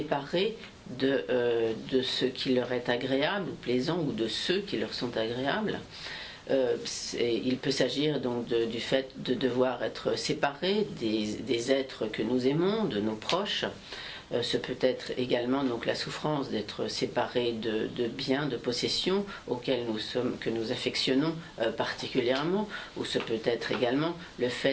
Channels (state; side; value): identical; both; correlation 1.00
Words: de ce qui leur est agréable ou plaisant, ou de ceux qui leur sont agréables. Il peut s'agir donc du fait de devoir être séparés des êtres que nous aimons, de nos proches. Ce peut être également donc la souffrance d'être séparé de biens, de possessions que nous affectionnons particulièrement, ou ce peut être également le